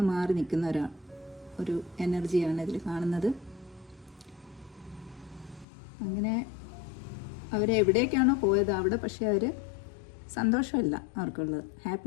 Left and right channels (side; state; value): right; drops out; at 5.7 s